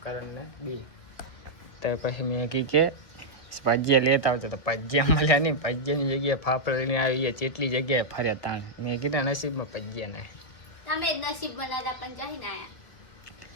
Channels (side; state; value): right; late; 2.0 ms